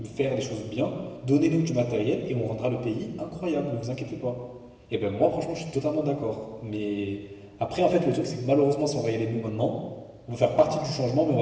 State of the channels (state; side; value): identical; both; correlation 1.00